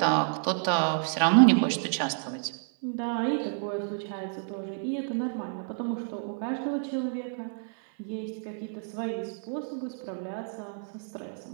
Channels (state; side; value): silent; left; 57 dB below the other